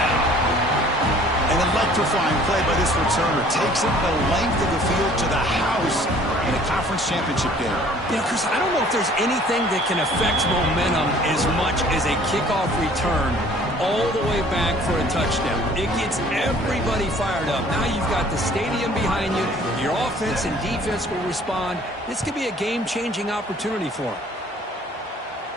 An electrifying play by this returner. Takes it the length of the field to the house in a conference championship game. You know, Chris, I don't know if there's anything that can affect momentum as much as a kickoff return all the way back for a touchdown. It gets everybody fired up. Now you've got the stadium behind you. Your offense and defense will respond. This could be a game-changing opportunity for them.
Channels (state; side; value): normal; both; correlation 0.54